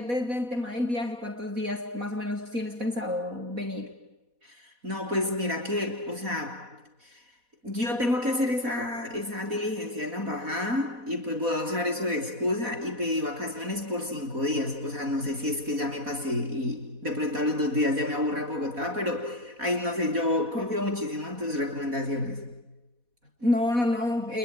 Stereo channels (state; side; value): late; left; 4.1 ms